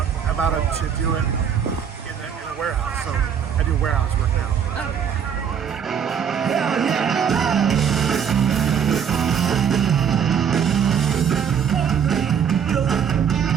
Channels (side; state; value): left; quieter; 7.7 dB